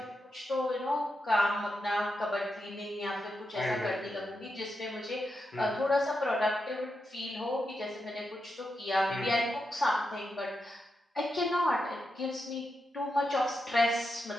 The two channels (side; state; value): both; normal; correlation 0.87